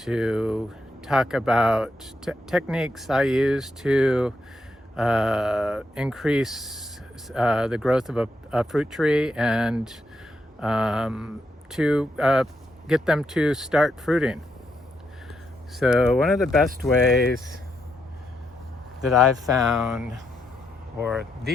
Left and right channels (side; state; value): both; normal; correlation 0.80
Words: talk about techniques I use to increase the growth of a fruit tree and to get them to start fruiting. So one of the best ways that I've found, or